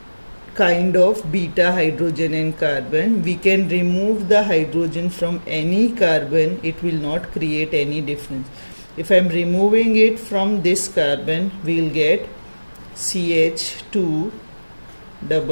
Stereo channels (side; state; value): both; inverted; correlation -1.00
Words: kind of beta hydrogen and carbon, we can remove the hydrogen from any carbon, it will not create any difference. If I am removing it from this carbon, we will get CH2